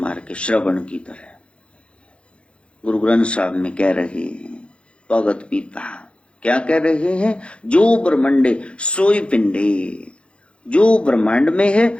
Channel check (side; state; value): right; late; 0.058 ms